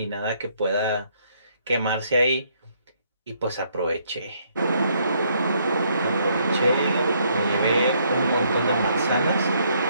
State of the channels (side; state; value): both; inverted; correlation -0.70